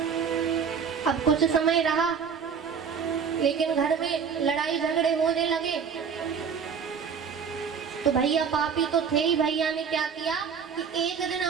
अब कुछ समय रहा, लेकिन घर में लड़ाई झगड़े होने लगे। तो भैया पापी तो थे ही, भैया ने क्या किया कि एक दिन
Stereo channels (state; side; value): quieter; left; 6.5 dB